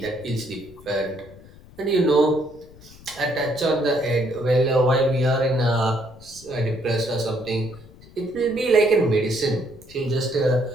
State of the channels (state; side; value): noise; left; rumble, 22 dB below the sound